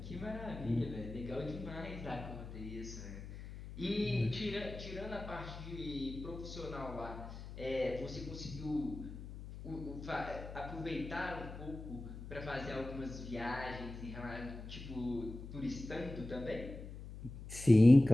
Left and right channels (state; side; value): noise; left; hum, 11 dB below the sound